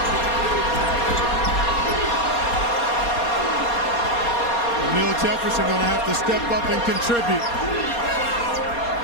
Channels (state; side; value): late; right; 4.2 ms